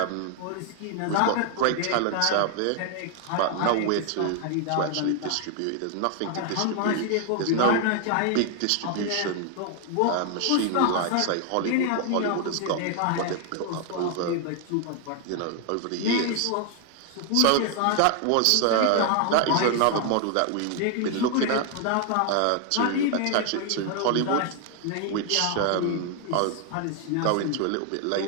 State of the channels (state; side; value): different; both; correlation 0.00